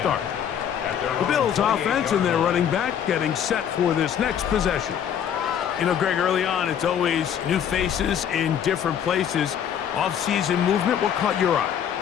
The Bills offense and their running back getting set for this next possession. You know, Greg, early on, it's always new faces in different places. Off-season movement, what caught your eye?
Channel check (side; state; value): right; quieter; 8.9 dB